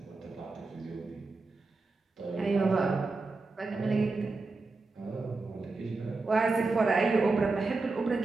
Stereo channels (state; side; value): quieter; left; 3.7 dB